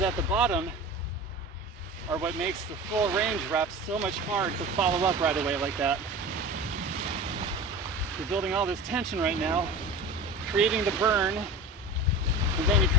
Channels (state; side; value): normal; both; correlation 0.33